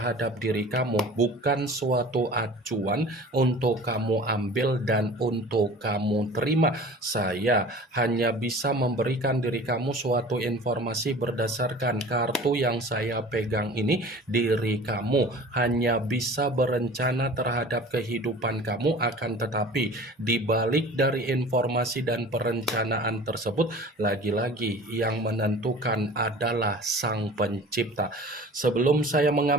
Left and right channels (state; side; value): normal; both; correlation 0.42